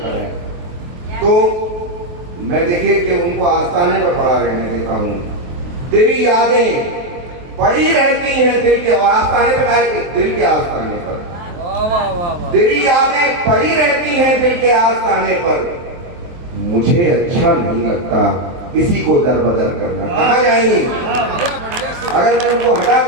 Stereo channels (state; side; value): late; left; 23 ms